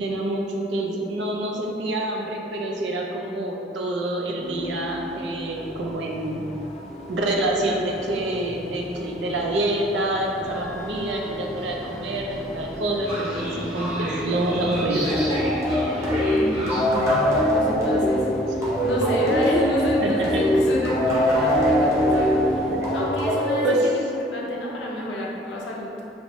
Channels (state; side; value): normal; both; correlation 0.51